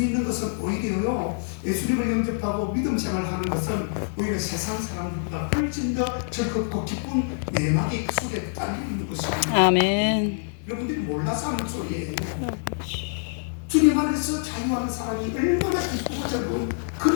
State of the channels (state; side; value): silent; right; digital silence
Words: 것은 오히려요, 예수님을 영접하고 믿음 생활하는 것은 오히려 세상 사람들보다 훨씬 더 즐겁고 기쁜 내막의 속에 딸려 있는 것입니다. 아멘. 여러분들이 몰라서 하는 소리예요. 아버지. 주님 안에서 자유하는 사람이 얼마나 기쁘고 즐거운